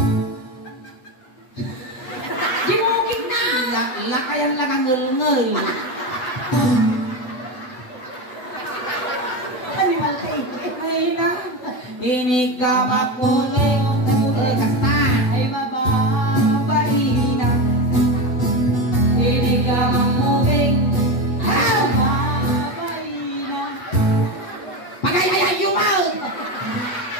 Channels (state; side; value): late; right; 8.0 ms